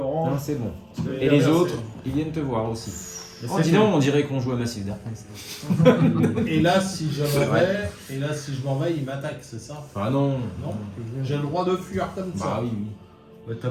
Non, c'est bon. c'est Et les bien, autres, ils viennent te voir aussi. Mais Oh, c'est dis donc, on dirait qu'on joue à Massive Darkness. Et là, si je m'en vais, il m'attaque, c'est ça? Ah non. Non. J'ai le droit de fuir comme Bah ça. oui, oui. Bah, t'as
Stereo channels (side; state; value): both; identical; correlation 1.00